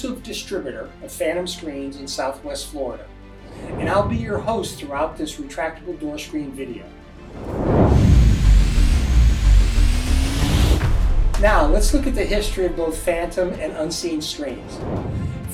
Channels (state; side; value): identical; both; correlation 1.00